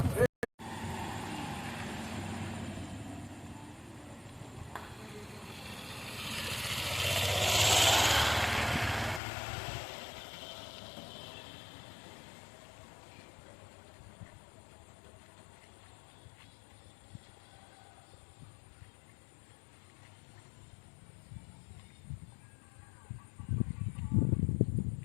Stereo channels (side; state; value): right; drops out; at 9.2 s